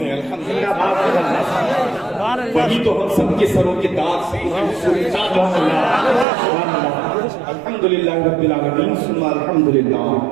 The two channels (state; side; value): drops out; left; at 6.2 s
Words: ہے. الحمدللہ وہی تو ہم سب کے سروں کے داغ سے الحمدللہ رب العالمین ثم الحمدللہ